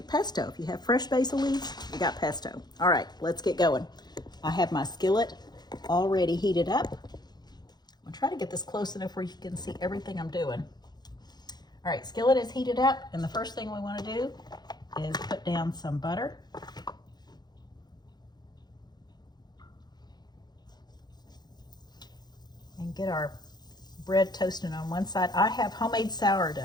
pesto. If you have fresh basil leaves, you got pesto. All right, let's get going. I have my skillet already heated up. I'm gonna try to get this close enough where you can see everything I'm doing. All right, skillet is heated up, and the first thing we want to do is put down some butter. And get our bread toasting on one side. I have homemade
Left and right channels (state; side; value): late; right; 0.20 ms